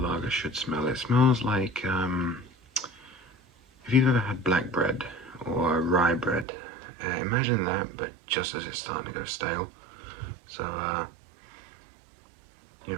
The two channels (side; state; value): left; drops out; at 6.5 s